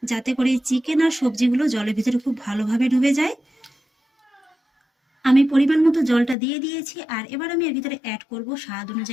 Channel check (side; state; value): right; drops out; at 6.4 s